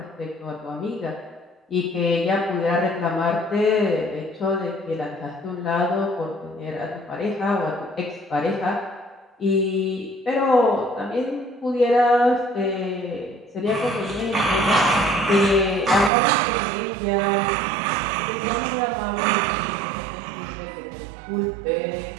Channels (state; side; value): drops out; left; at 16.1 s